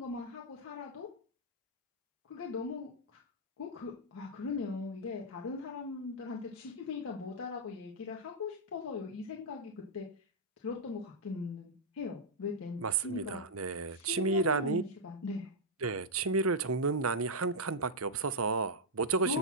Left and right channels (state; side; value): normal; both; correlation -0.07